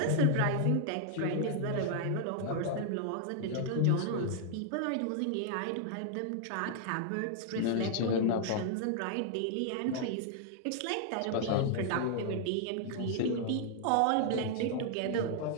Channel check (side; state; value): both; different; correlation -0.01